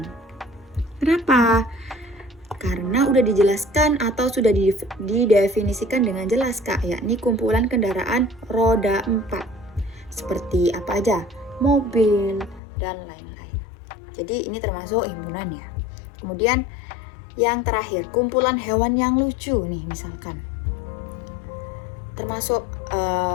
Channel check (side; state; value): right; drops out; at 12.6 s